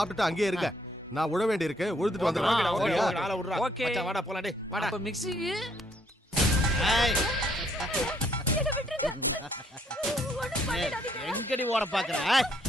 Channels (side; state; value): both; normal; correlation 0.68